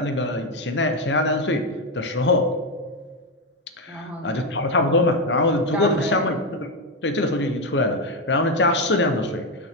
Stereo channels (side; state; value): both; normal; correlation 0.08